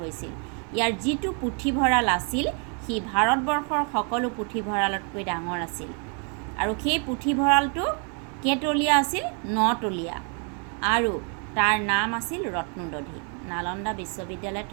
ইয়াৰ যিটো পুথিভঁৰাল আছিল সি ভাৰতবৰ্ষৰ সকলো পুথিভঁৰালতকৈ ডাঙৰ আছিল। আৰু সেই পুথিভঁৰালটো কেইতলীয়া আছিল? 9তলীয়া। আৰু তাৰ নাম আছিল ৰত্নদধি। নালন্দা বিশ্ববিদ্যালয়ত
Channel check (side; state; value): left; quieter; 39.3 dB